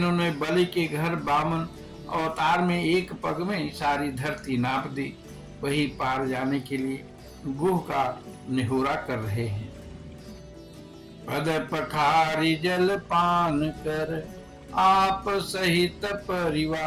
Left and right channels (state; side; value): identical; both; correlation 1.00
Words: बलि के घर बामन अवतार में एक पग में सारी धरती नाप दी, वही पार जाने के लिए गुह का निहोरा कर रहे हैं। पद पखारी जल पान कर, आप सहित